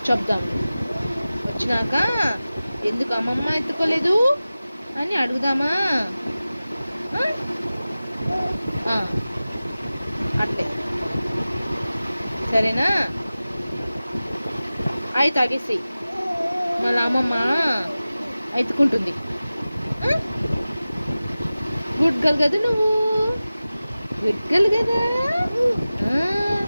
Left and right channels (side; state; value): both; inverted; correlation -0.96